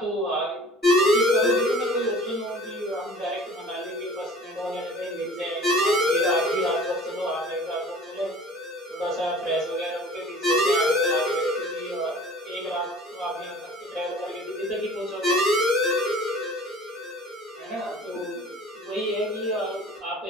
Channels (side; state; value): both; normal; correlation 0.46